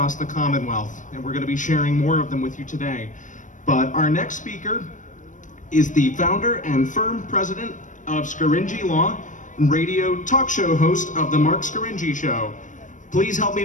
the Commonwealth, and we're going to be sharing more of them with you today. But our next speaker is the founder and firm president of Scaringi Law and radio talk show host of The Mark Scaringi Show. Please help me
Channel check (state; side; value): late; right; 0.37 ms